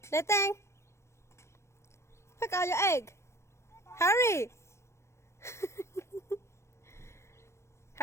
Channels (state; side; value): late; right; 0.13 ms